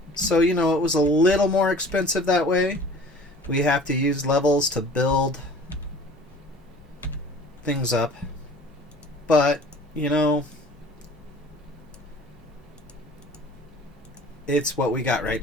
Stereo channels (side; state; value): both; normal; correlation 0.46